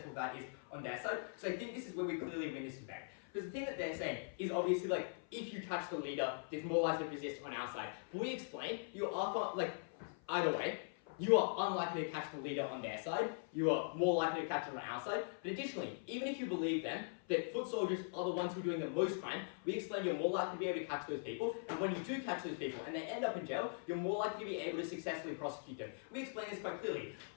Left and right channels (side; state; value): right; silent; 50 dB below the other